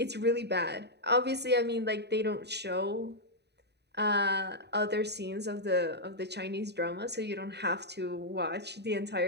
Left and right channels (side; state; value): left; late; 0.49 ms